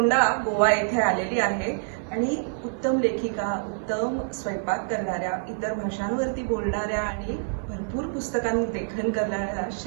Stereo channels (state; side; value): silent; left; digital silence